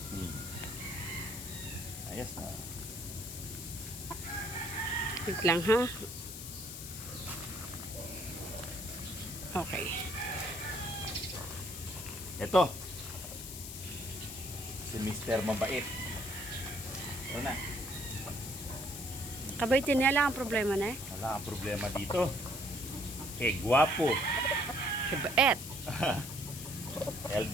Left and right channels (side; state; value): left; noise; hiss, 9 dB below the sound